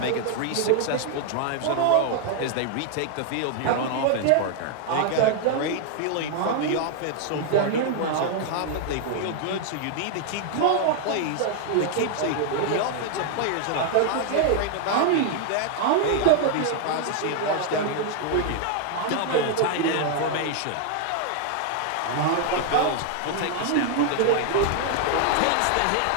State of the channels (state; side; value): different; both; correlation 0.00